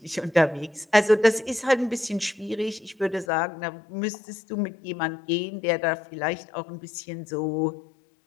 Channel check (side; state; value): right; drops out; at 3.2 s